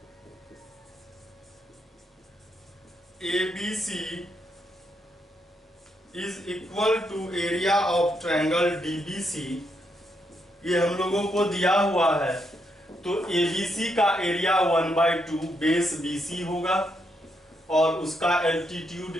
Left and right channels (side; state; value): both; normal; correlation 0.79